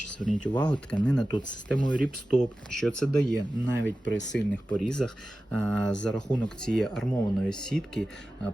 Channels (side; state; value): both; normal; correlation 0.95